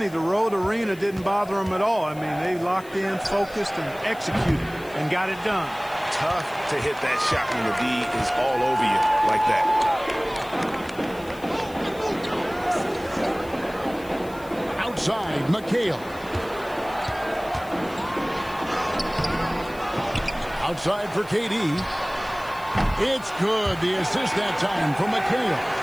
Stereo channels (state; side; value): noise; left; hiss, 22 dB below the sound